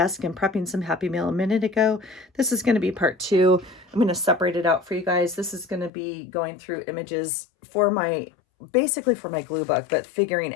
and prepping some Happy Meal a minute ago. This is going to be part two. I'm going to separate it out for you guys. This is going to be going through images for basically for my glue book, but figuring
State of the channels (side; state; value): right; drops out; at 5.9 s